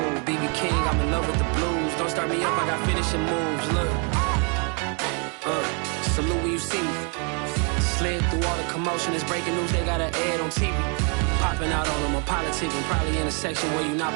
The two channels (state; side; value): quieter; left; 37.2 dB